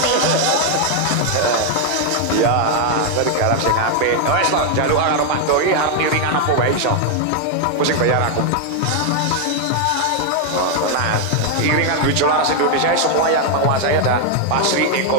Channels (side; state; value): both; different; correlation 0.00